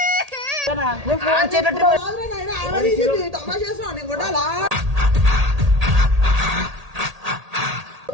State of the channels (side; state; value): left; late; 1.8 ms